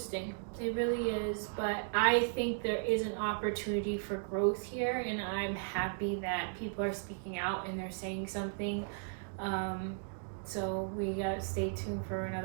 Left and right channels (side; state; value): left; silent; digital silence